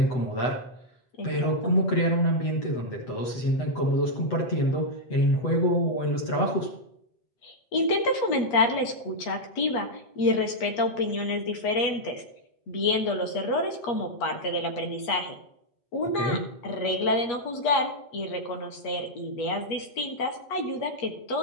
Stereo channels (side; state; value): right; late; 8.3 ms